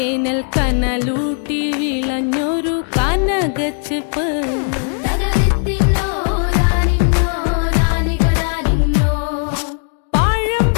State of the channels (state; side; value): silent; right; 58 dB below the other